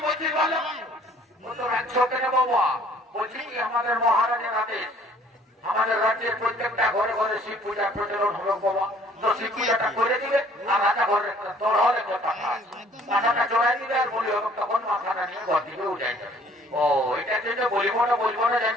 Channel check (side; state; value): both; normal; correlation 0.57